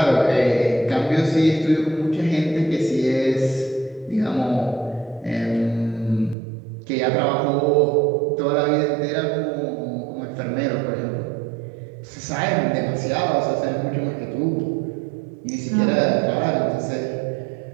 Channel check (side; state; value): left; drops out; at 6.4 s